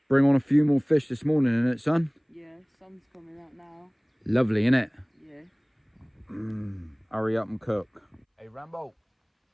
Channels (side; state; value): both; identical; correlation 1.00